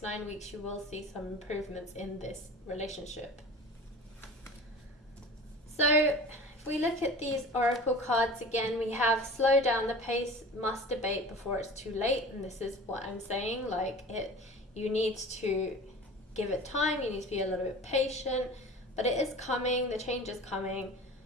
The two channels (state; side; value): normal; both; correlation 0.38